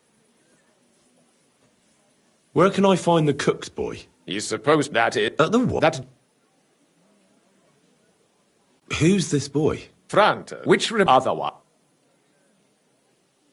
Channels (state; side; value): identical; both; correlation 1.00